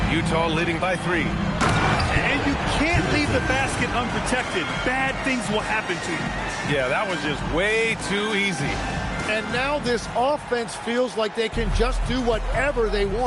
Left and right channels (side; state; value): both; identical; correlation 1.00